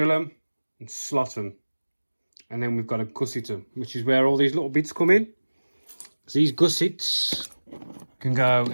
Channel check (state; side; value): inverted; both; correlation -1.00